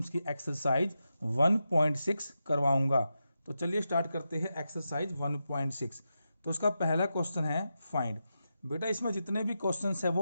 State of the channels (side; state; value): both; inverted; correlation -0.88